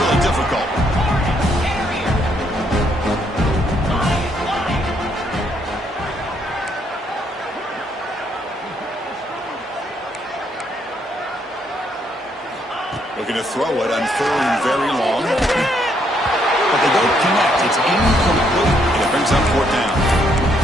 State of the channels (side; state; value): both; normal; correlation 0.72